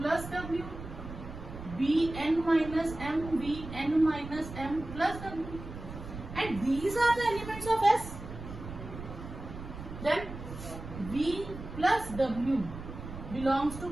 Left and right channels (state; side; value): noise; right; rumble, 11 dB below the sound